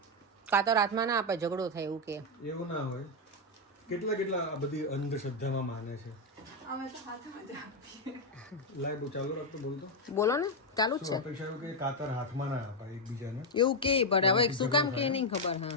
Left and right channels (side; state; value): both; normal; correlation 0.03